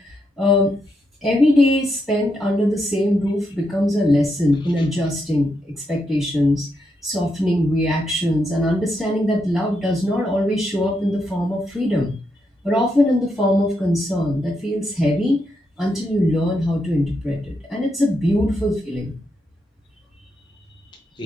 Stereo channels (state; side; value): normal; both; correlation 0.81